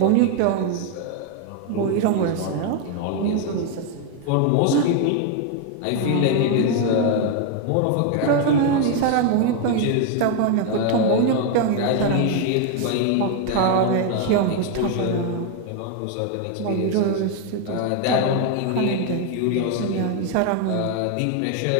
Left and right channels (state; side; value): different; both; correlation 0.01